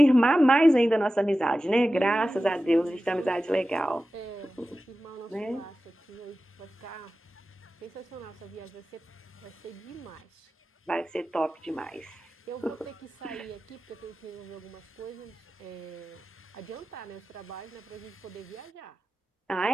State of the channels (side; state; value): both; normal; correlation 0.95